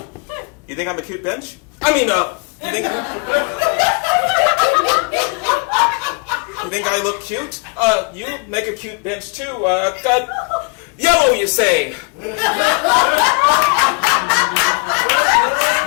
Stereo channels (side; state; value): right; quieter; 32.5 dB